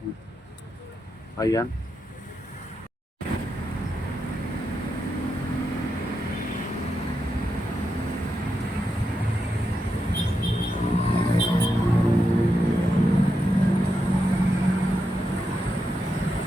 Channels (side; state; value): both; normal; correlation 0.85